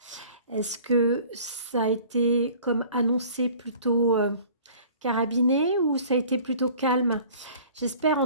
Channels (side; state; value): both; inverted; correlation -0.48